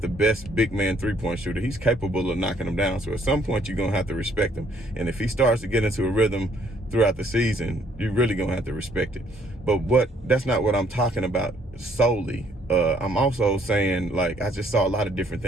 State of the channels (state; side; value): normal; both; correlation 0.65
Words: best big man 3-point shooter, he's capable of knocking them down. So at some point, you're going to have to respect him. And if he starts to get into a rhythm throughout the season, you're really going to have to respect it. But that's not what I'm talking about solely. I'm also saying, I just saw a lot of different